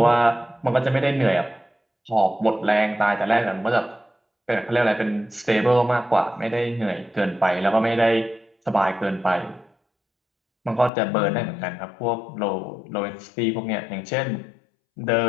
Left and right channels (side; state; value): right; drops out; at 10.9 s